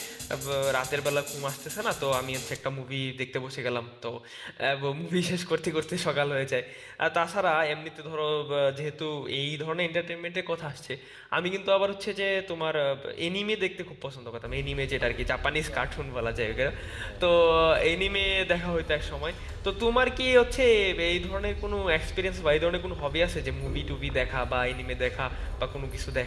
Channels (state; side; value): identical; both; correlation 1.00